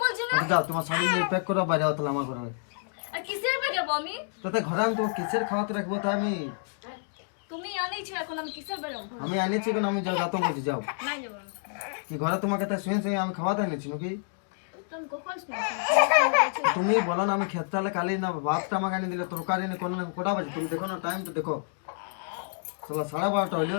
বলছি না আচ্ছা, যাও তোমার শাড়ি নিয়ে প্যাক করো বাইরে হতো আমার ঘরে। আর কিসের পে যাবো আমি তাতে ঘরে আমি তোমার কিসের খাওয়াতে রাখবো তাই তুমি আনেইছো এখন আমি কিসের পে যাবো আমি আনিয়েছি কেন, আমি যাও যাতো বলছি যাও। নাই যাবো আমি কি ঘরে তোমাকে তাই শুয়ে শুয়ে আমি খাওয়াতে আনিয়েছি নাকি? তো আমি কখন শুনেছি তুমি বলো না আমি খেতে হলে কালি না ভাতটা আমাকে আনি দিলে তরকারি নেই কোনো কোটা বাজে তুমি দেখো না টাইম তো দেখো। চলো 12:30 হইলো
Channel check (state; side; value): silent; right; digital silence